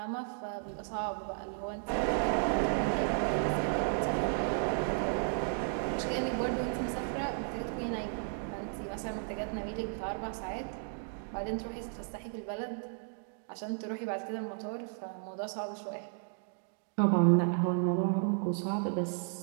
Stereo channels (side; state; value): left; silent; 55 dB below the other